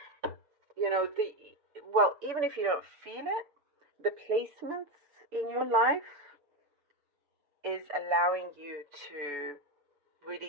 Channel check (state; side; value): late; left; 6.9 ms